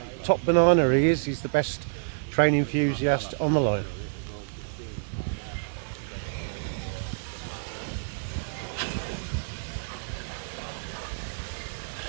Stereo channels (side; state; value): left; silent; 59 dB below the other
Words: banana he is. He's the best train enthusiast on the line.